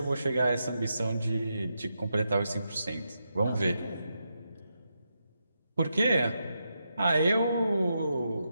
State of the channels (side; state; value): both; inverted; correlation -0.85